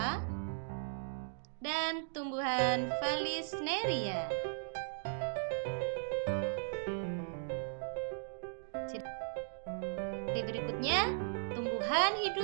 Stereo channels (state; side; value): silent; left; digital silence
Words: dan tumbuhan Vallisneria. Ciri berikutnya, tumbuhan